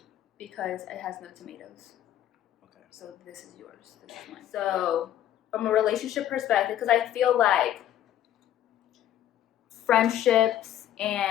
Because it has no tomatoes. Okay. So this is yours. This is mine. So from a relationship perspective, because I feel like friendships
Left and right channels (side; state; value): right; quieter; 11.8 dB